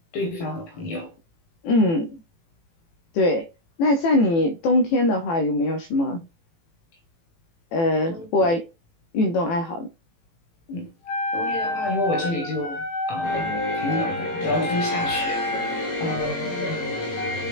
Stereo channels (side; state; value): right; late; 18 ms